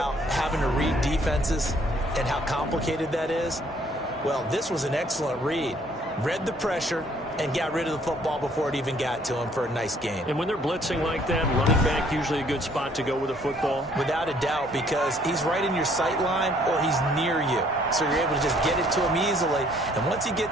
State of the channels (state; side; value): normal; both; correlation 0.62